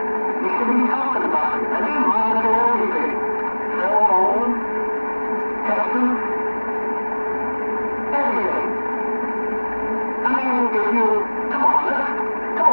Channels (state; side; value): inverted; both; correlation -1.00